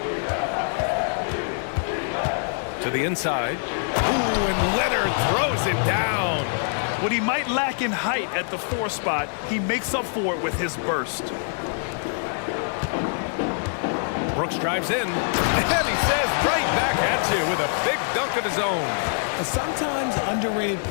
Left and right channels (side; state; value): right; silent; digital silence